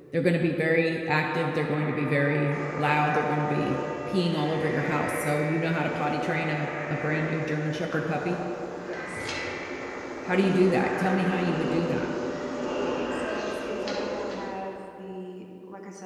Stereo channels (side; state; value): both; identical; correlation 1.00